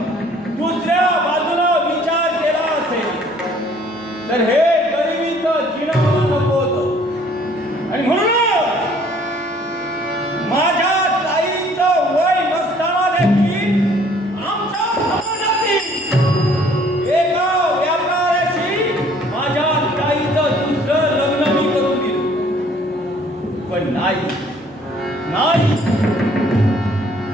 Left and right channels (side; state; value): right; noise; hum, 29 dB below the sound